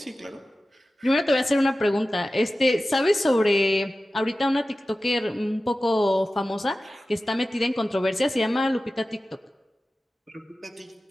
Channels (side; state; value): both; normal; correlation 0.95